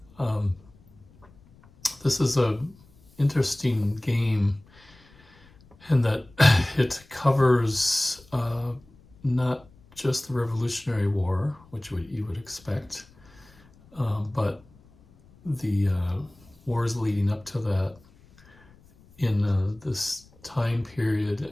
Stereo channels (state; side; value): noise; left; rumble, 27 dB below the sound